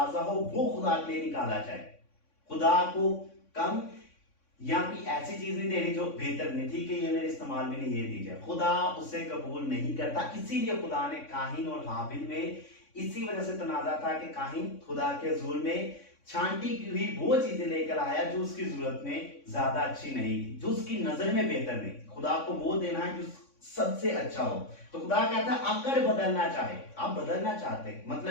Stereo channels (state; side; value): late; right; 3.6 ms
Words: हो, वो खुदा के लिए निकाला जाए। खुदा को कम या कोई ऐसी चीज नहीं देनी जो बेहतर नहीं थी कि ये मेरे इस्तेमाल में नहीं, ये दी जाए, खुदा उसे कबूल नहीं करता। इसीलिए खुदा ने काहिन और हाबिल में इसी वजह से तनाजा था कि काहिन खुदा के हुजूर में छांटी की हुई वो चीजें लेकर आया जो उसकी जरूरत में ज्यादा अच्छी नहीं थी, जो उसकी नजर में बेहतर नहीं। खुदा को वो देना है जो सबसे अच्छा हो। तो खुदा कहता है अगर बदलना चाहे, आप बदलना चाहते हैं,